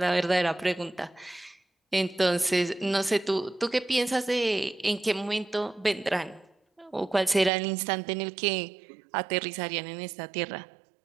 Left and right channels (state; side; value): drops out; left; at 7.5 s